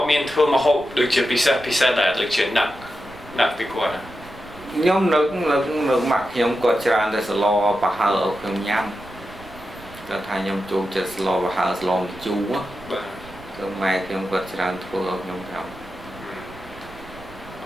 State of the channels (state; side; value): noise; right; rumble, 19 dB below the sound